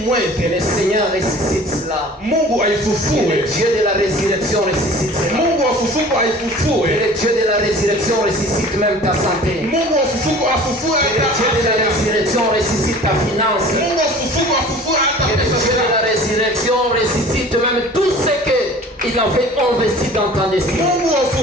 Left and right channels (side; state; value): both; normal; correlation 0.45